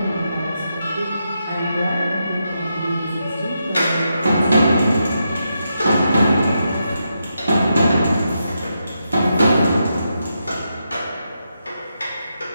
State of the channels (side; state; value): both; inverted; correlation -0.84